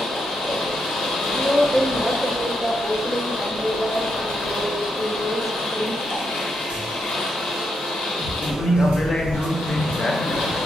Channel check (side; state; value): both; normal; correlation 0.81